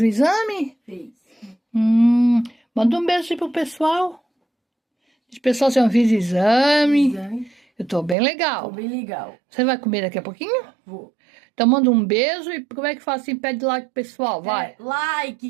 o exame? Fez. Manda um beijo aí pro pessoal. Os pessoal já fiz exame. Eu tô bem legal. Tô bem legal. Você vai comer daqui a pouquinho? Vou. Então manda um beijo e como é que faz assim? Pede like pro pessoal, vai.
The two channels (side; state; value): left; drops out; at 8.2 s